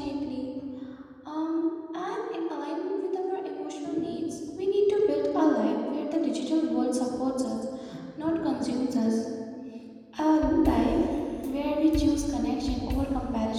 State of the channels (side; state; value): both; identical; correlation 1.00